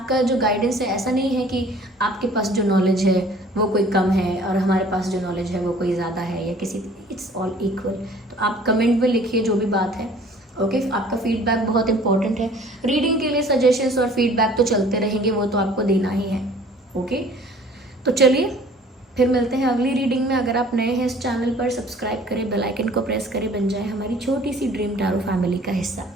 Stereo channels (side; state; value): both; normal; correlation 0.51